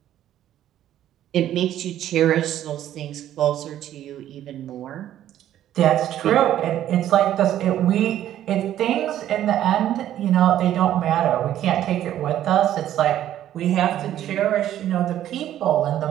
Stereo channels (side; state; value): left; quieter; 11.9 dB